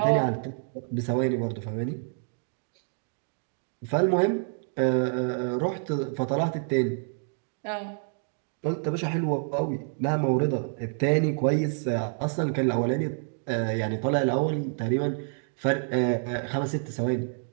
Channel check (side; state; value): left; silent; digital silence